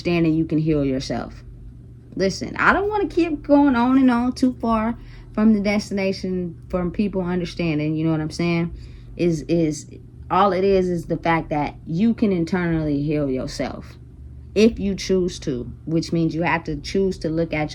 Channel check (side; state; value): both; identical; correlation 1.00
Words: you can heal yourself. Listen, I don't want to keep going on and on too far from the destination, from people understanding, you know what I'm saying? Is all it is the fact that you can internally heal yourself if you choose to, which means you have to choose to look at